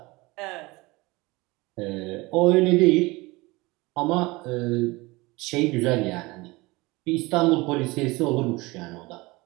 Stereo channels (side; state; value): left; quieter; 22.7 dB